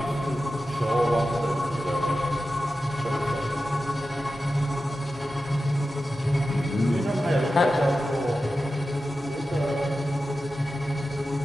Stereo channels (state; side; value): normal; both; correlation 0.93